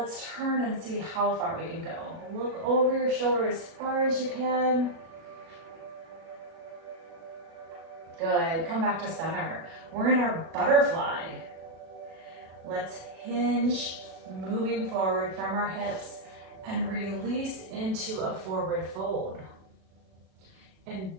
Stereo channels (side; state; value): left; late; 37 ms